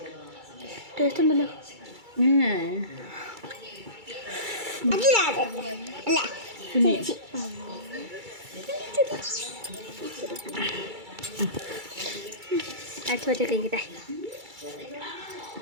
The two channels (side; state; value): left; late; 2.3 ms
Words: ടേസ്റ്റ് ഉണ്ടല്ലോ. അച്ഛൻ കഴിക്കട്ടെ.